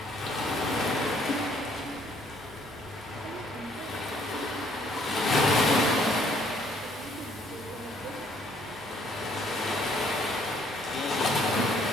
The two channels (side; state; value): both; normal; correlation 0.64